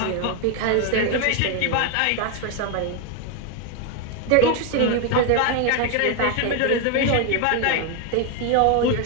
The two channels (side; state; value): both; different; correlation 0.01